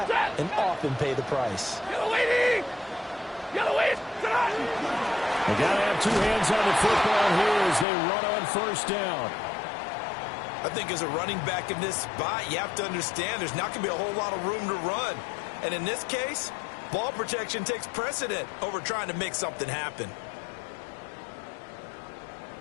and often pay the price. Yellow wait. They got to have two hands on the football here as they run on 1st down. I think as a running back in this spot, you have to understand there's not going to be a whole lot of room to run. And in this case, ball protection takes precedent over trying to make something happen.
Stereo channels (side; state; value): right; drops out; at 7.9 s